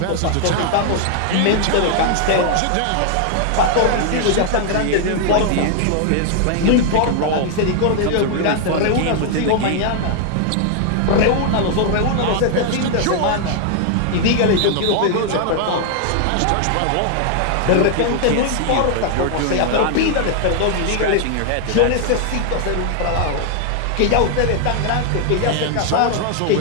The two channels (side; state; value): both; different; correlation 0.00